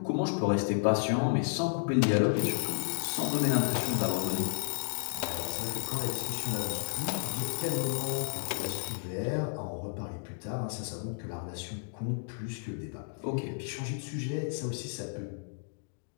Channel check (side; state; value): right; silent; digital silence